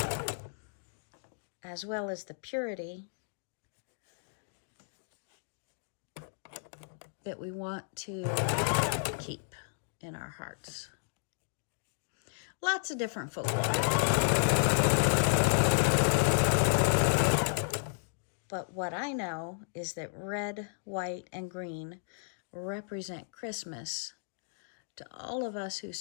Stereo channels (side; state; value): right; silent; digital silence